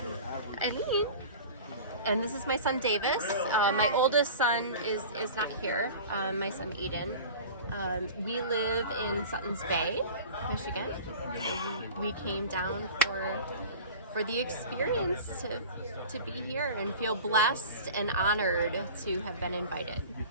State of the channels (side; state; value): both; inverted; correlation -0.38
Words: And this is my son, Davis. My oldest son is not here, my son, Eden. We live in Suttons Bay, Michigan. So we came down for the experience to be here and feel blessed and honored to have been invited.